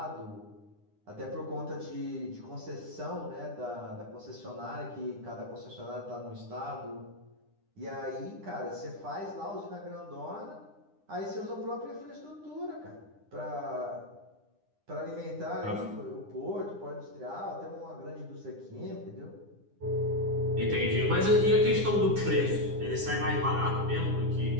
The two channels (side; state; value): left; late; 9.9 ms